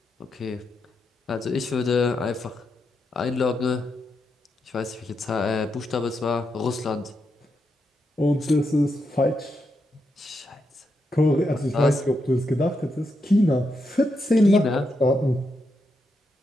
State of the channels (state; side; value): normal; both; correlation 0.83